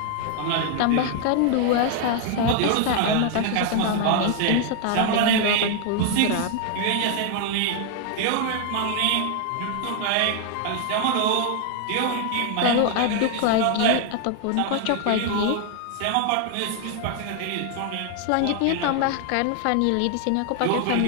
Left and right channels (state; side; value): different; both; correlation 0.00